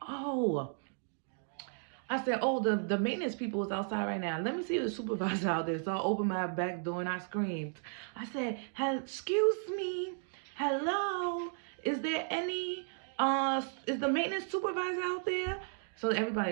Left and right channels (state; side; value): silent; left; 55 dB below the other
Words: I said, oh, the maintenance people is outside right now. Let me see the supervisor out there. So I opened my back door and I screamed. I said, excuse me, hello, is there any, is the maintenance supervisor out there? So